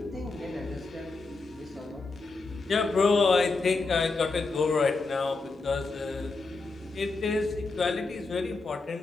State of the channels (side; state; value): right; quieter; 3.7 dB